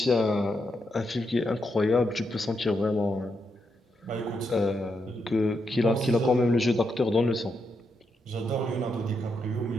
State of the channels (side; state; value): both; normal; correlation 0.82